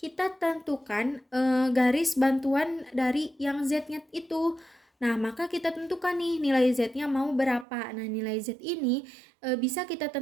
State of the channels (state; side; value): drops out; left; at 7.7 s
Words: tentukan garis bantuan dari yang Z-nya itu. Nah, maka kita tentukan nih nilai Z-nya mau berapa. Nah, nilai Z ini bisa kita